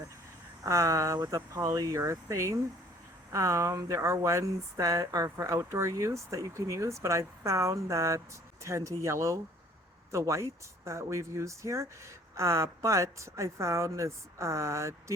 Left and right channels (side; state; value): both; normal; correlation 0.55